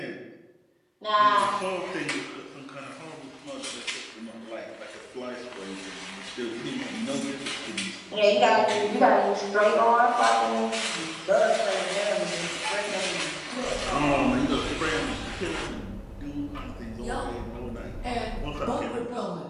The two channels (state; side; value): identical; both; correlation 1.00